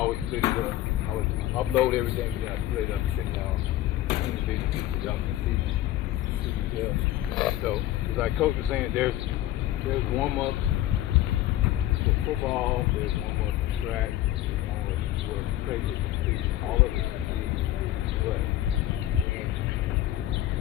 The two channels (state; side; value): quieter; right; 14.1 dB